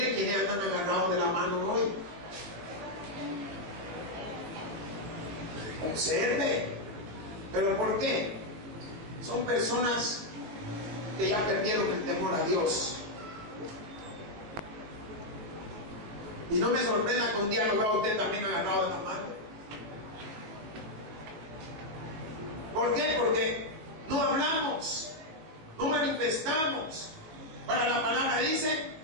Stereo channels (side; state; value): left; late; 19 ms